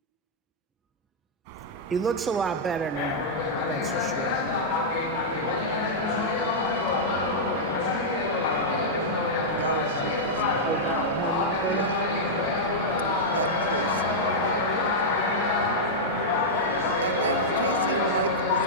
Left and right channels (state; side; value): normal; both; correlation -0.07